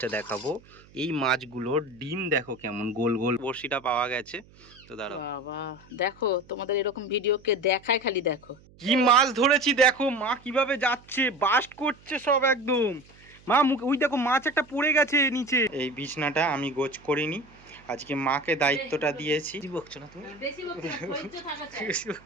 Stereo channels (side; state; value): right; noise; hum, 26 dB below the sound